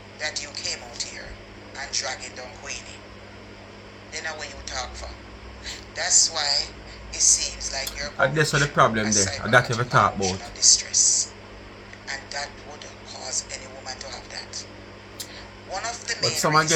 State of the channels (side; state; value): both; identical; correlation 1.00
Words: that you came out here and dragging down Queenie, then how will you talk for? That's why it seems like you're and that's what the problem there. And that you ever talk about. Distress. And that would cause any woman to have that. One of the but some are